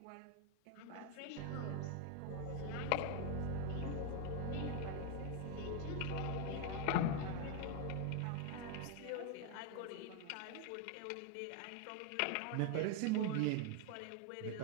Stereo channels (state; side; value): different; both; correlation 0.00